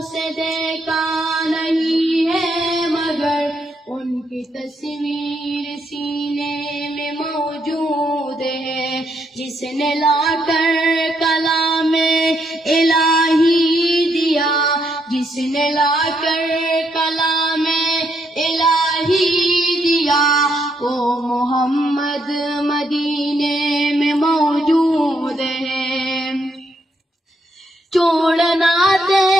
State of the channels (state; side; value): normal; both; correlation 0.76